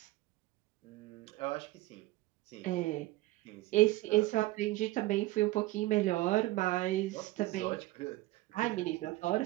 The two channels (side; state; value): left; quieter; 18.3 dB